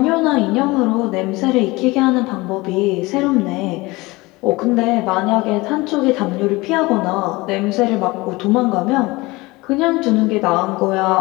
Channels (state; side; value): quieter; right; 22.3 dB